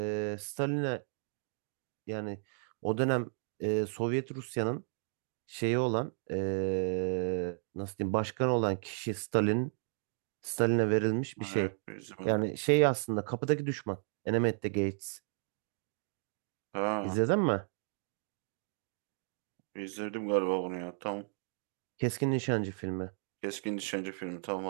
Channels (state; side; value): silent; left; 55 dB below the other